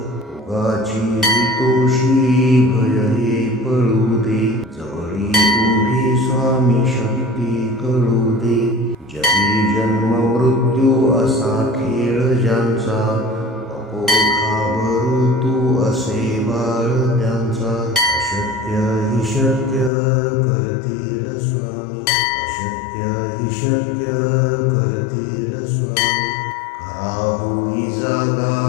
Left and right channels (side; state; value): right; drops out; at 19.9 s